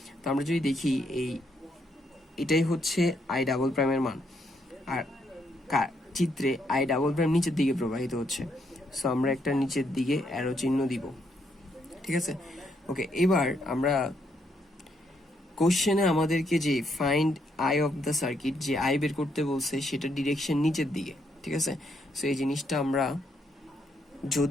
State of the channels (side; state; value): both; normal; correlation 0.75